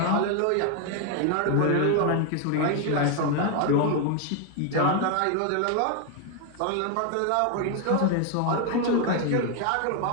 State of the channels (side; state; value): both; different; correlation 0.01